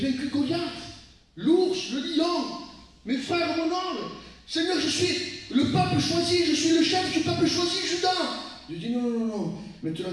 vaincu Goliath, l'ours, le lion, mes frères, mon oncle. Seigneur, je suis le peuple choisi, je suis le chef du peuple choisi, Juda. Je dis non, non, non, non. Maintenant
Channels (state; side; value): identical; both; correlation 1.00